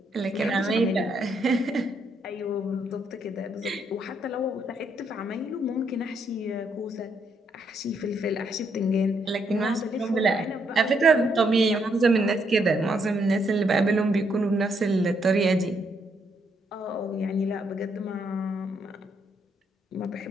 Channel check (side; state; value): both; normal; correlation 0.74